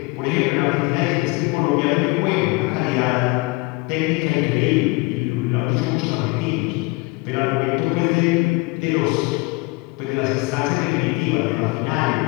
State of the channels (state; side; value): quieter; right; 25.4 dB